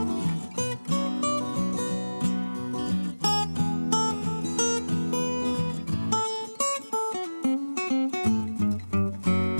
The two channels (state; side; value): inverted; both; correlation -1.00